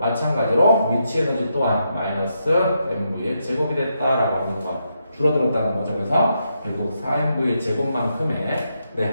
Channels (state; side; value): inverted; both; correlation -0.81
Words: 위치 에너지 또한 마이너스 MV의 제곱이 됐다라고 하는 거 줄어들었다는 거죠. 그래서 결국 4MV의 제곱만큼의